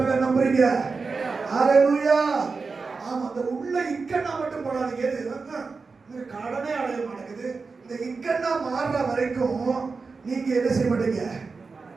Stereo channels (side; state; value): left; quieter; 4.5 dB